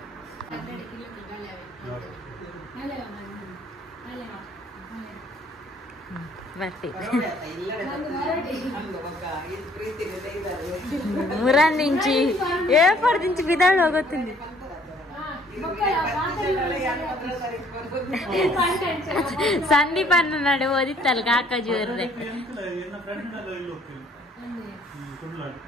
ಮುರಾಂದಿಂಚಿ ಏಪರ್ದಿಂಚಿ ಬಿದಾಳು ಹೋಗುತ್ತೀನಿ. ಸಂದೀಪ್ ಅನ್ನ ನಡೆ ಓದಿತ್ತಲ್ಲ ಕಾಕಾಜಿ ಅವ್ರದ್ದೆ.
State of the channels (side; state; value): both; normal; correlation 0.60